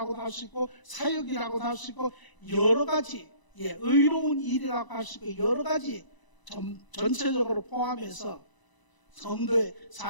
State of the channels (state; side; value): late; right; 1.0 ms